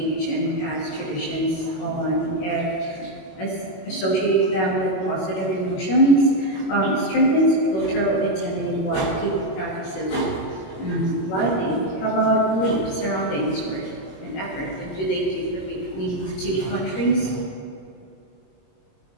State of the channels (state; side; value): late; right; 21 ms